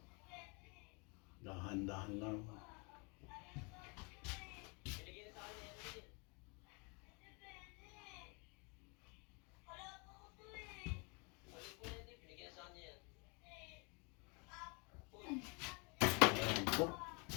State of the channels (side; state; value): right; quieter; 32.1 dB